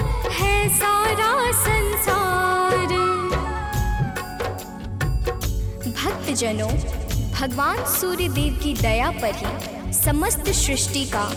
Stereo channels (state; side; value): identical; both; correlation 1.00